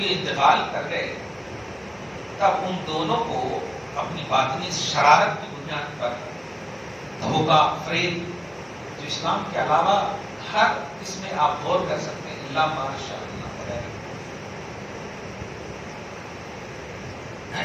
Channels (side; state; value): both; identical; correlation 1.00